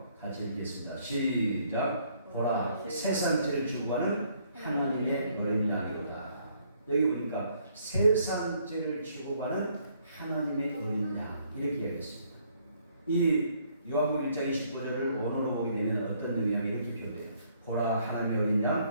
같이 읽겠습니다. 시작. 보라 세상 죄를 지고 가는 하나님의 어린 양이로다. 여기 보니까 세상 죄를 지고 가는 하나님의 어린 양 이렇게 얘기했습니다. 이 요한복음 1장 29절을 원어로 보게 되면 어떤 의미냐 이렇게 표현해요. 보라 하나님의 어린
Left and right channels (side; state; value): both; inverted; correlation -0.67